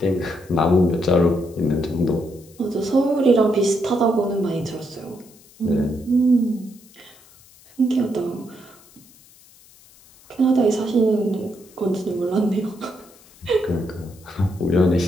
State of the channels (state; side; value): noise; left; hiss, 26 dB below the sound